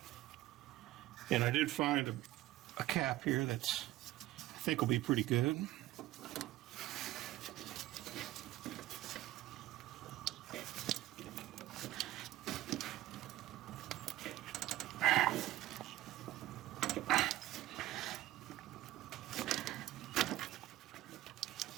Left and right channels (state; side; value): quieter; left; 16.0 dB